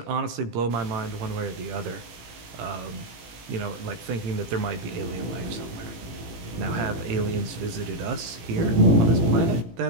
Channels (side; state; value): left; late; 18 ms